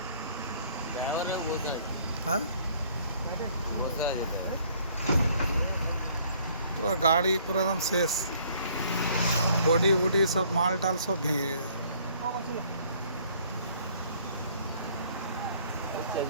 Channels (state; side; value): inverted; both; correlation -0.60